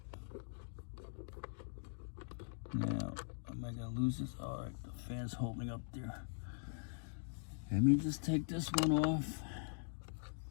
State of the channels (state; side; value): silent; right; digital silence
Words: Now, am I gonna lose this? All right, the fan's holding up there. Let me just take this one off.